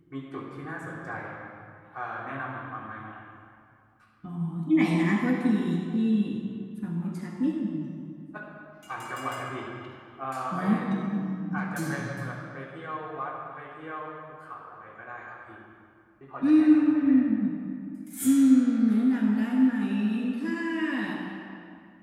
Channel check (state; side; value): identical; both; correlation 1.00